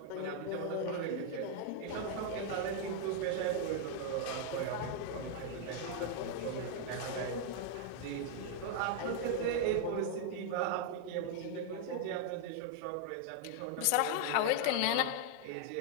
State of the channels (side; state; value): both; different; correlation 0.00